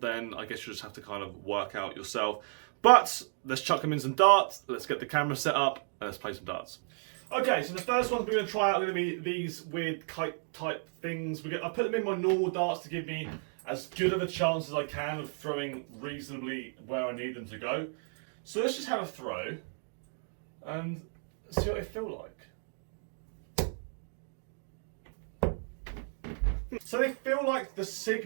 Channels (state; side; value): silent; left; 56 dB below the other